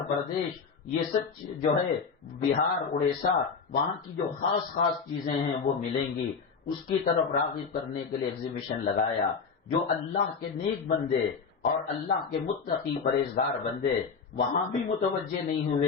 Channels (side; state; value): right; quieter; 5.4 dB